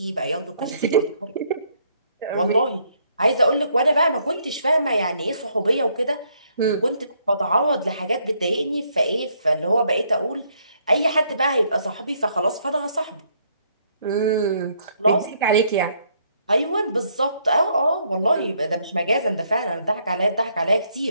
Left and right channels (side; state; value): both; inverted; correlation -0.70